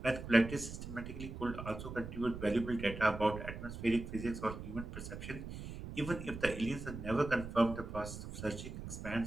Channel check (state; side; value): noise; right; rumble, 9 dB below the sound